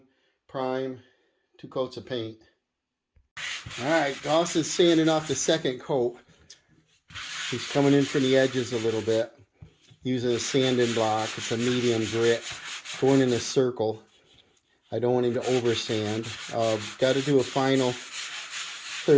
prime, 2 coats of paint. Alright, Dawson's sanding off the second coat. He's coming in from the edges a little bit, using a sanding block. It's a medium grit, going in a circle. I don't want him to over sand. Got to do a final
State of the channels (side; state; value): both; identical; correlation 1.00